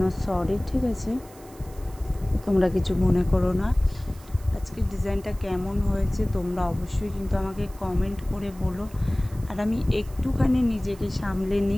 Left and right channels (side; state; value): right; noise; hiss, 23 dB below the sound